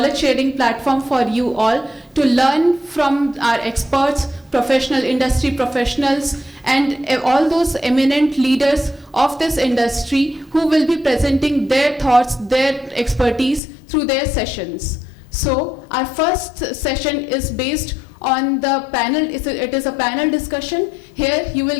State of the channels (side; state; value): right; drops out; at 13.6 s